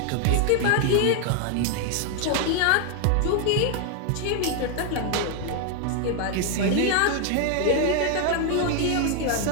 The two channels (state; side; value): different; both; correlation 0.01